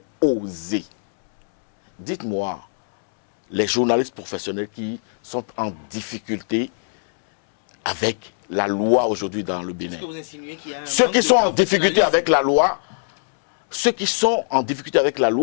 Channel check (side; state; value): right; silent; 65 dB below the other